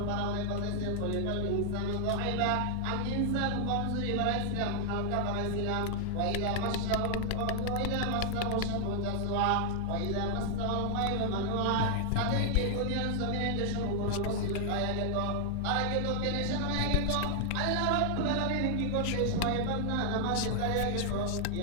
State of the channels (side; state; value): both; different; correlation 0.00